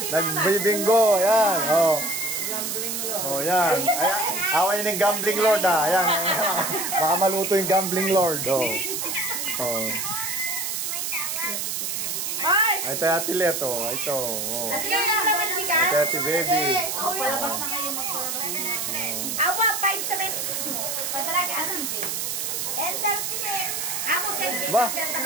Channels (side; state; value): right; noise; hiss, 2 dB below the sound